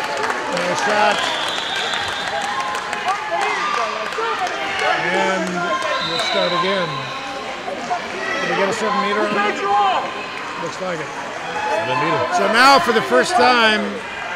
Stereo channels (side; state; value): both; identical; correlation 1.00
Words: No shot. And we'll start again. Did we get a 7-meter on it? Looks like it. 7-meter. So now for the first time